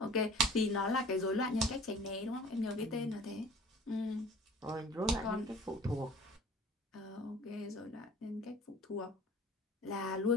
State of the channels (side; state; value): both; normal; correlation 0.46